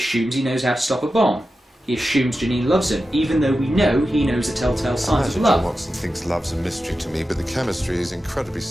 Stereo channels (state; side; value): normal; both; correlation 0.92